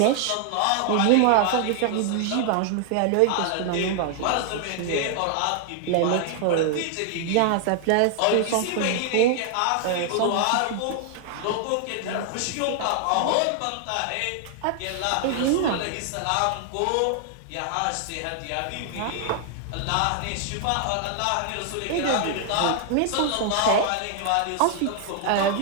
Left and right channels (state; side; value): different; both; correlation 0.00